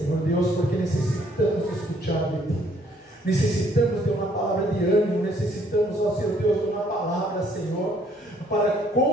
Deus, porque necessitamos escutar de ti. Necessitamos de uma palavra de ânimo, necessitamos, ó Senhor Deus, de uma palavra, Senhor, para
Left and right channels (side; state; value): both; normal; correlation 0.64